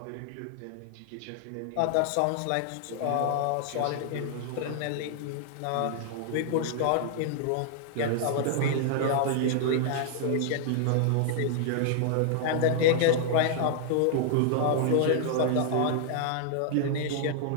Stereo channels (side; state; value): both; different; correlation -0.01